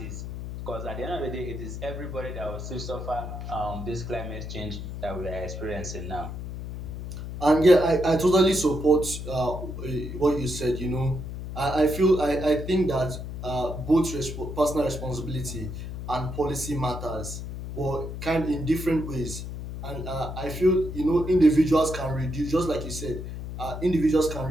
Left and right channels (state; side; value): noise; left; hum, 7 dB below the sound